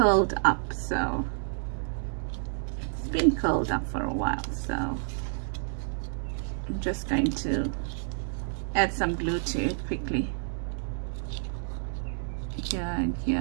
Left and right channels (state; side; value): silent; left; digital silence